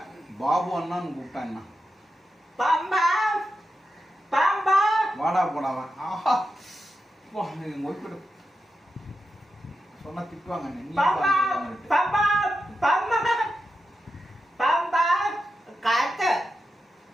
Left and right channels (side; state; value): both; normal; correlation 0.88